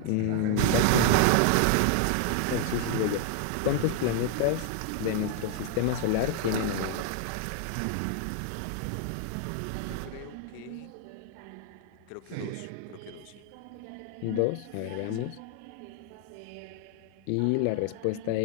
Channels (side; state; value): both; different; correlation 0.00